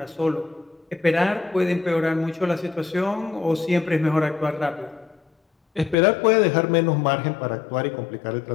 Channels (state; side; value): drops out; right; at 6.0 s